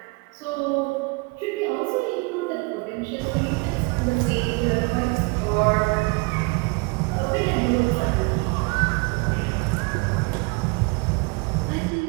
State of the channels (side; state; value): left; quieter; 29.2 dB